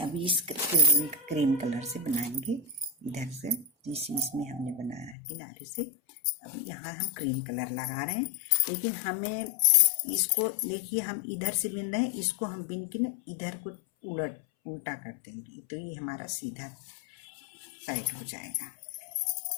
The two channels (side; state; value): right; drops out; at 5.2 s